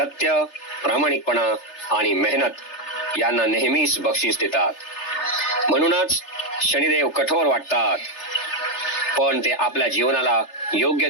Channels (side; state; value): right; late; 3.3 ms